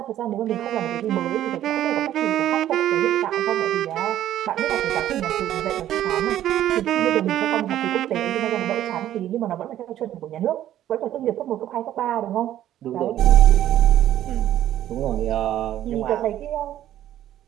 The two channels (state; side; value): quieter; left; 12.3 dB